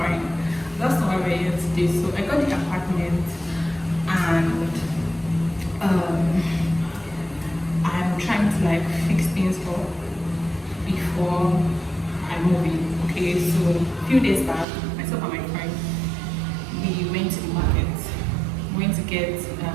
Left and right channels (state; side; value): drops out; left; at 14.7 s